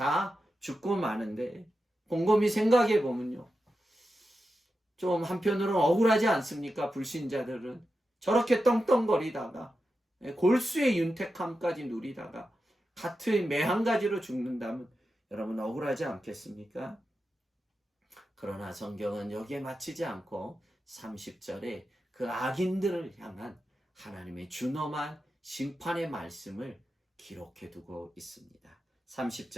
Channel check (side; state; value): both; normal; correlation 0.90